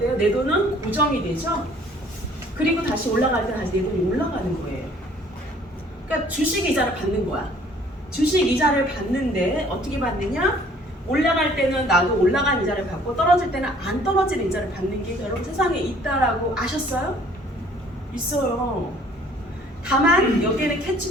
내 돈은 고정이 되죠? 그리고 다시 올라갈 때 다시 내 돈이 올라가는 거예요. 그러니까 주식 이자를 받는 거야. 주식 이자를 받는데 어떻게 받느냐? 올라갈 때는 나도 올라간 이자를 받고 떨어질 때는 안 떨어지는 이자를 받는 게 여러분 세상에 있다라고 아셨어요? 있어요. 다만 여기에는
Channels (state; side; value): normal; both; correlation 0.56